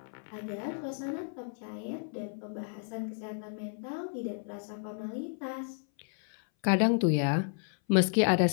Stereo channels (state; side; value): silent; right; 56 dB below the other